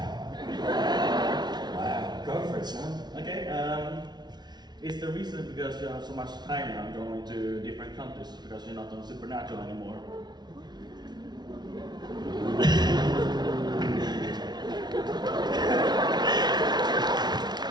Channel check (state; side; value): late; left; 0.20 ms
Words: Wow, go for it, son. Okay. Is the reason because you have so much time now going to different countries because you're not on Supernatural anymore?